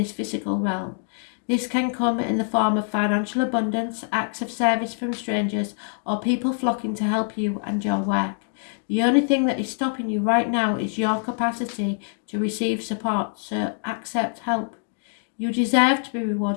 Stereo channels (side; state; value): right; silent; 62 dB below the other